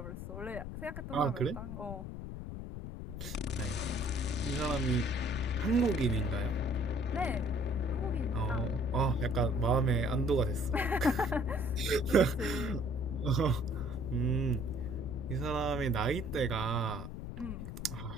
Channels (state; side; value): noise; left; rumble, 8 dB below the sound